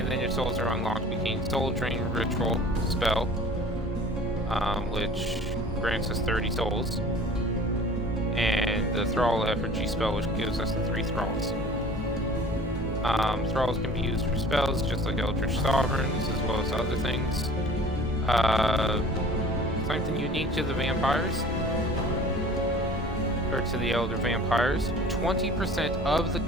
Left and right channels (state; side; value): normal; both; correlation 0.46